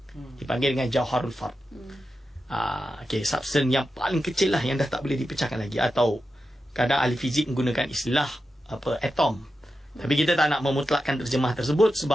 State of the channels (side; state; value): both; normal; correlation 0.90